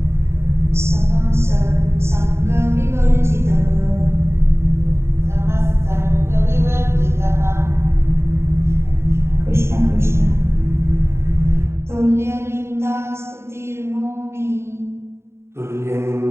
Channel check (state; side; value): late; left; 0.13 ms